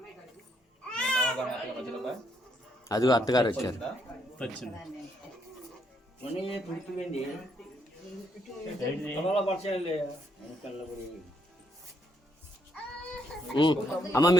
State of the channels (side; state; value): both; normal; correlation 0.74